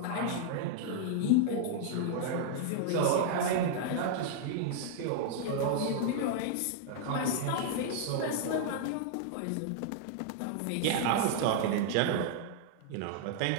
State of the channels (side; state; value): both; different; correlation -0.01